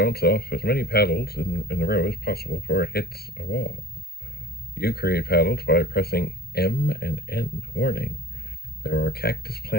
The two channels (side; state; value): right; late; 0.46 ms